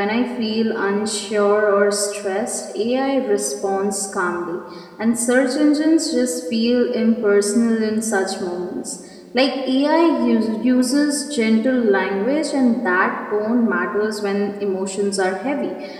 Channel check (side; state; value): both; identical; correlation 1.00